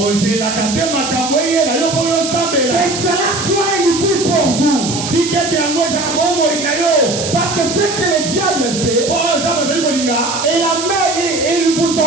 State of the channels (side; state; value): right; noise; hiss, 6 dB below the sound